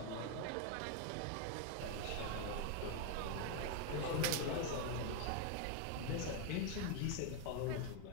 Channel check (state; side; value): different; both; correlation 0.01